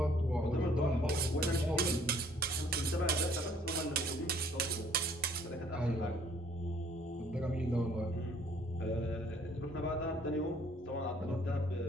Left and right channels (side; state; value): both; normal; correlation 0.59